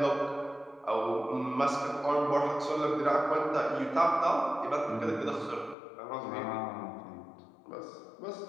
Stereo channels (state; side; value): drops out; right; at 5.8 s